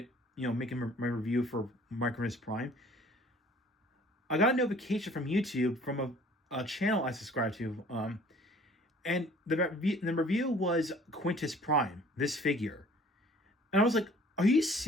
making my review for Micronus Prime, I got a notification from YouTube from a channel I subscribe to, and the review was Quintus Prime, this figure. And I was like, are you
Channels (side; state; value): both; normal; correlation 0.53